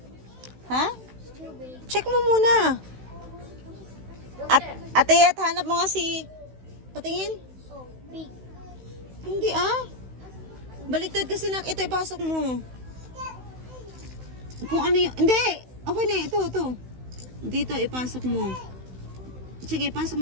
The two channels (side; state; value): left; late; 16 ms